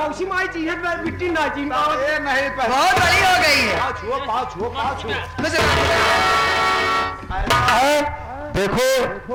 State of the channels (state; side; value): identical; both; correlation 1.00